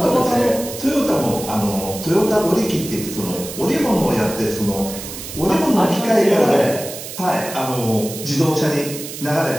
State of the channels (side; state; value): right; noise; hiss, 10 dB below the sound